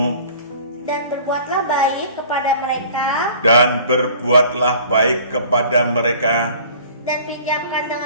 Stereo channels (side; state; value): both; inverted; correlation -0.48